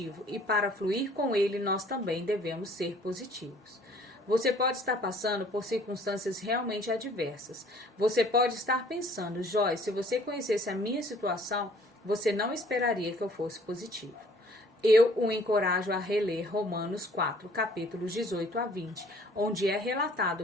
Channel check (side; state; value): both; normal; correlation 0.56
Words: e para fluir com Ele nós também devemos ser positivos. Você pode estar passando por circunstâncias realmente adversas. Você pode estar pensando, Joyce, se você conhecesse a minha situação, você não esperaria que eu fosse positivo. Eu o encorajo a reler Romanos 4, capítulos 18 a 20, onde é